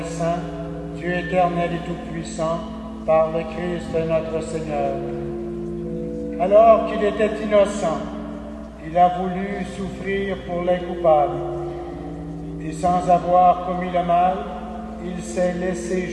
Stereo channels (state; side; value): identical; both; correlation 1.00